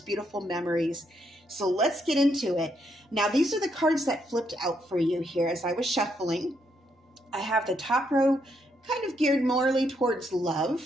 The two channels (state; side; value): normal; both; correlation 0.76